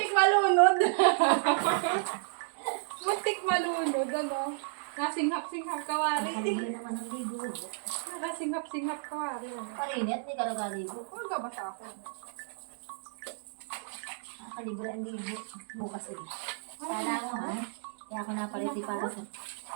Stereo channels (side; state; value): left; silent; digital silence